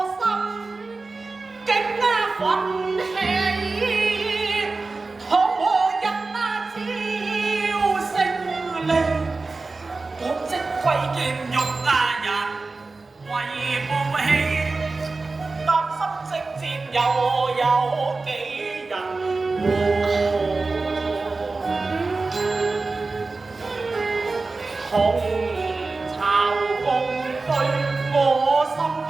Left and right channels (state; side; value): quieter; left; 3.7 dB